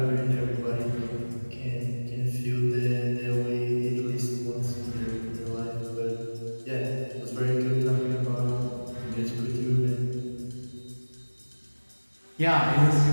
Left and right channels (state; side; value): inverted; both; correlation -1.00